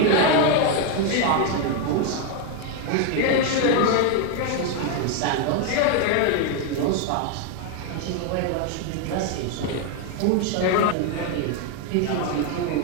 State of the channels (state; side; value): different; both; correlation 0.01